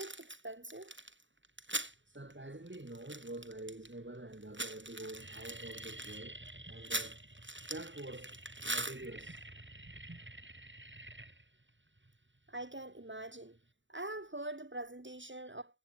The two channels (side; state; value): left; late; 0.55 ms